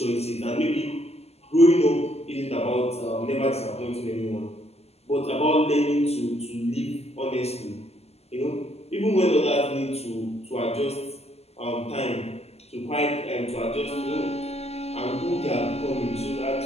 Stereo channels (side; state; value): right; late; 0.30 ms